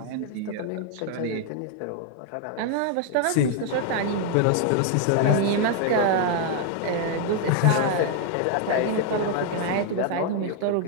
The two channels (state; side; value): different; both; correlation 0.00